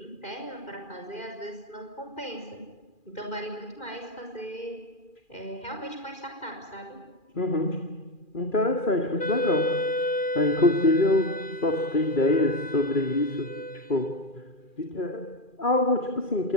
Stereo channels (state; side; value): late; right; 2.4 ms